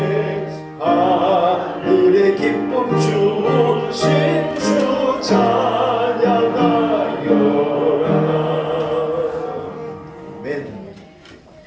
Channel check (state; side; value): identical; both; correlation 1.00